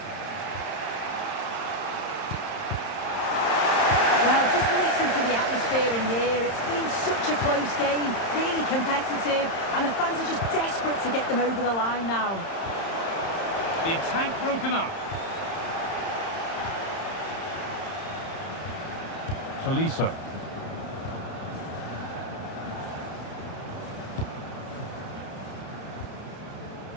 Well, just listen to the atmosphere in here. It's been such a close game, really competitive, and the fans are just desperate to get them over the line now. The attack broken up. Tolisso.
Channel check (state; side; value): late; right; 31 ms